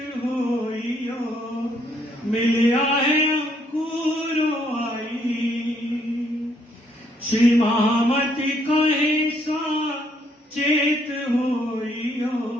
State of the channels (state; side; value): normal; both; correlation 0.70